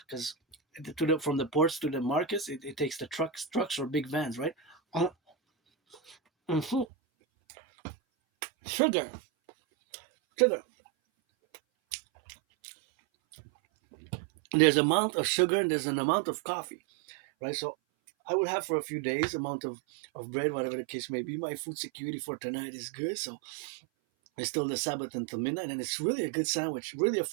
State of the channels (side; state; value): left; drops out; at 6.9 s